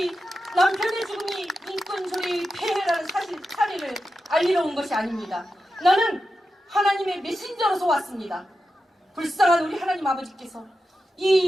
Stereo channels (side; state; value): both; normal; correlation 0.90